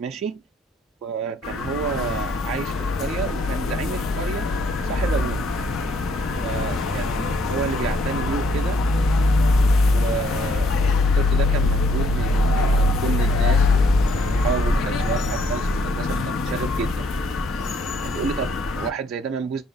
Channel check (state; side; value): normal; both; correlation 0.66